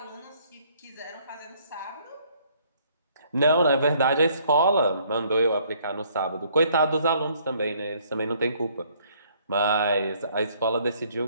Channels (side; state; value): both; inverted; correlation -0.63